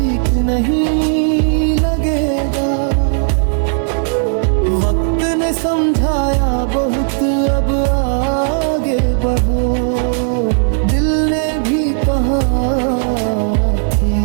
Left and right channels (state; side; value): silent; left; digital silence